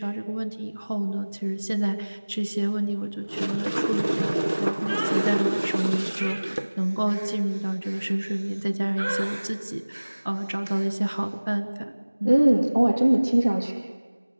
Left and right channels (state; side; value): inverted; both; correlation -1.00